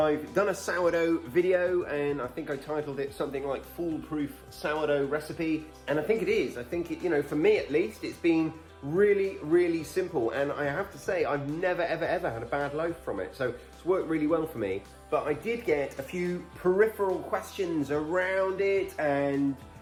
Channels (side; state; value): both; identical; correlation 1.00